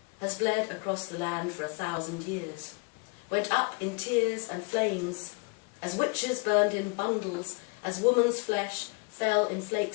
has bled across the land for 1,000 years, went up in tears and flames, as witches burned in bundles, as woman's flesh fell in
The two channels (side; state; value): right; quieter; 31.8 dB